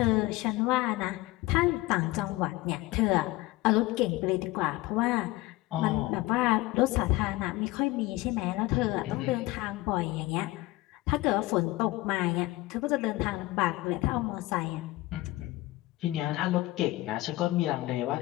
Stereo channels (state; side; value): quieter; right; 18.9 dB